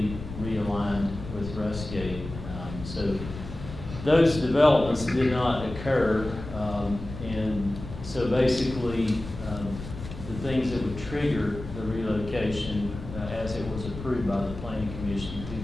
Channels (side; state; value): left; noise; rumble, 11 dB below the sound